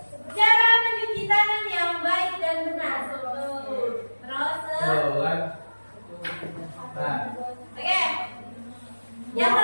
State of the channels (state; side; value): inverted; both; correlation -1.00